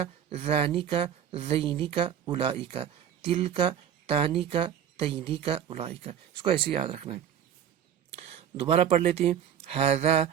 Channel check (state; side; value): quieter; left; 9.2 dB